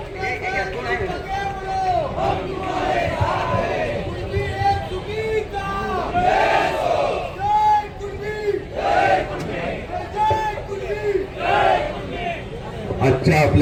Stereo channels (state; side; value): identical; both; correlation 1.00